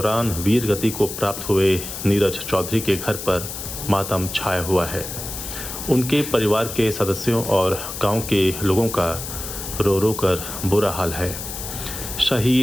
वीर गति को प्राप्त हुए नीरज चौधरी के घर पर मातम छाया हुआ है। उनके परिवार के सदस्यों और गांव के लोगों का रो रो कर बुरा हाल है।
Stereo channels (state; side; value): noise; left; hiss, 8 dB below the sound